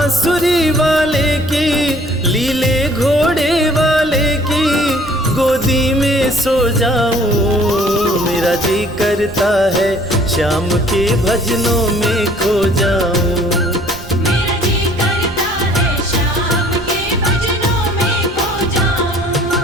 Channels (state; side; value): noise; right; rumble, 15 dB below the sound